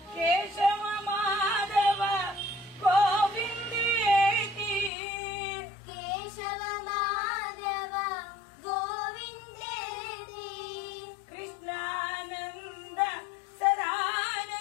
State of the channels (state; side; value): drops out; right; at 4.9 s